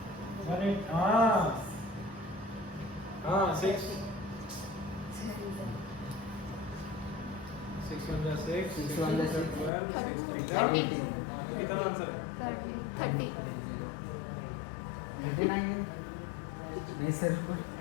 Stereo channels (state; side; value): drops out; right; at 9.7 s